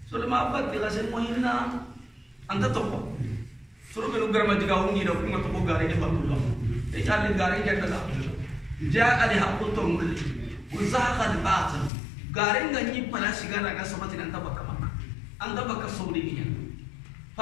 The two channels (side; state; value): right; drops out; at 11.9 s